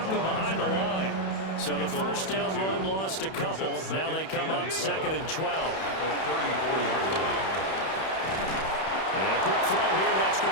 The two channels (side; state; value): right; late; 31 ms